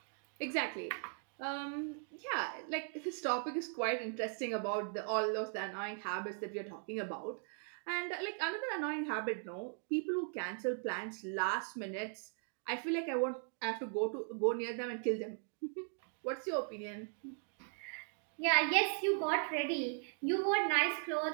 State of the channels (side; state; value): left; silent; 52 dB below the other